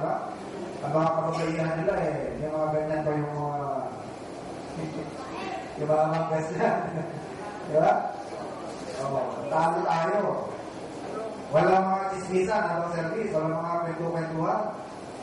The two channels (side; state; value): both; identical; correlation 1.00